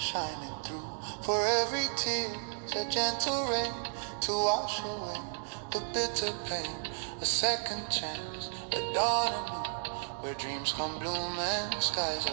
through. For every tear's a gentle rain to wash away the bitter pain. A second chance, a dawn anew, where dreams come bloom and skies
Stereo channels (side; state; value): left; silent; digital silence